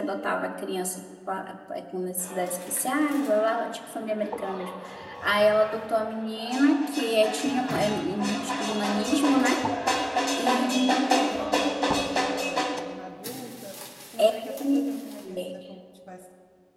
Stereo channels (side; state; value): both; identical; correlation 1.00